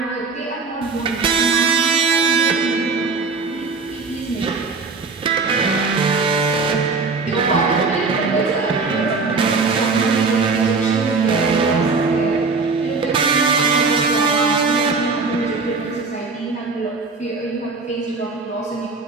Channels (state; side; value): quieter; left; 4.3 dB